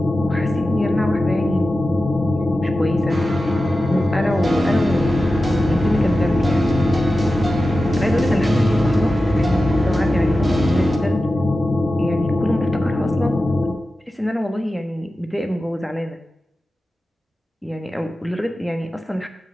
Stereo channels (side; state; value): both; normal; correlation 0.93